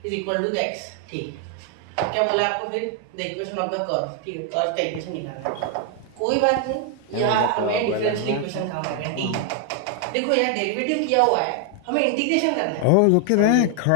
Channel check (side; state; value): both; different; correlation 0.00